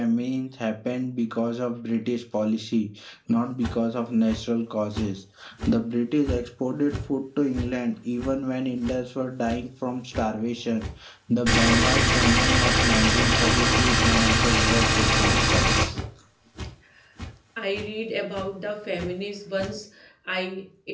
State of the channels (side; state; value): both; identical; correlation 1.00